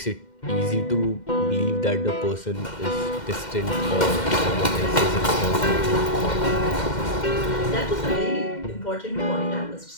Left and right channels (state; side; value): late; right; 2.1 ms